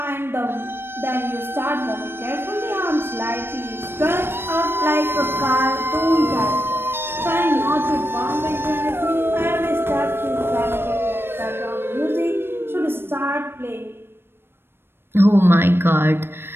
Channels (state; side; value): late; left; 0.11 ms